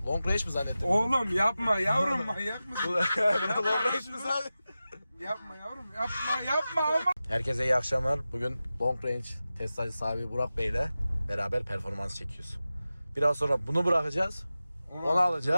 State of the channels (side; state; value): both; inverted; correlation -0.94